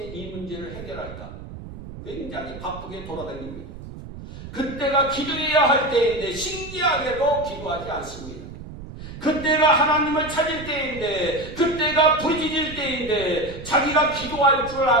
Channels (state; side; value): noise; right; rumble, 13 dB below the sound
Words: 이 문제를 해결할까? 굉장히 바쁘게 돌아다닙니다. 그때가 기도해야 할 때인데 신기하게도 기도하지 않습니다. 그때가 하나님을 찾을 때인데, 그때가 부르짖을 때인데 자기가 기도할 줄